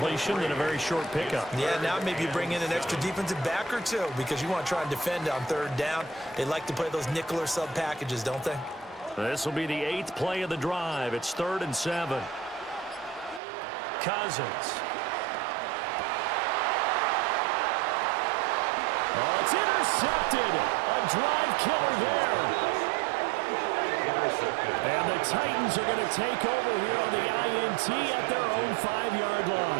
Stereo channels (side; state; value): left; drops out; at 13.4 s